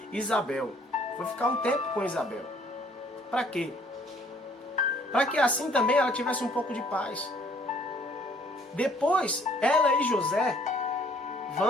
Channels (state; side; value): normal; both; correlation 0.61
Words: Isabel, foi ficar um tempo com Isabel. Para quê? Para que assim também ela tivesse um pouco de paz. Depois, ela e José